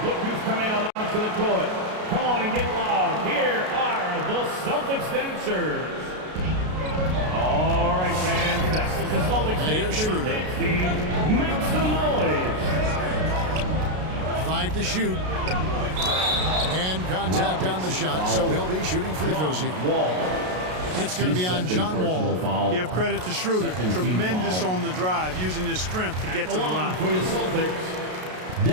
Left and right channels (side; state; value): left; late; 33 ms